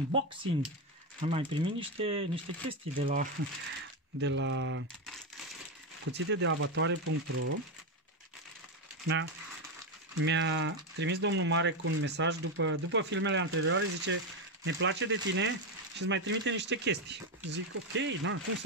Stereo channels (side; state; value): both; normal; correlation 0.09